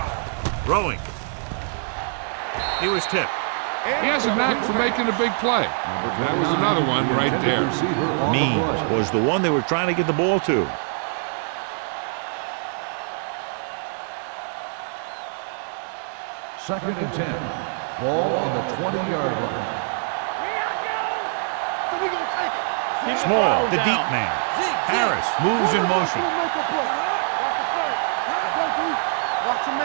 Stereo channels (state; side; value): silent; left; digital silence